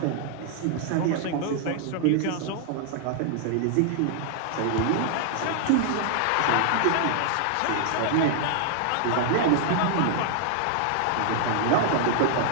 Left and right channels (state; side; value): different; both; correlation -0.01